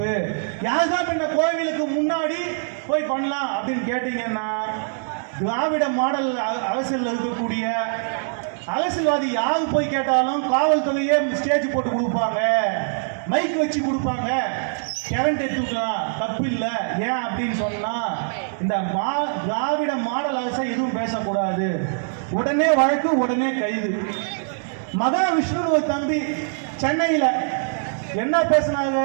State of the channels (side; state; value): left; silent; digital silence